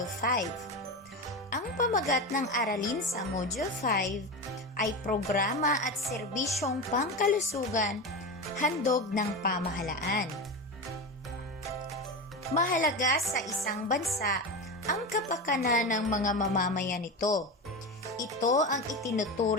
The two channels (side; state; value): both; normal; correlation 0.21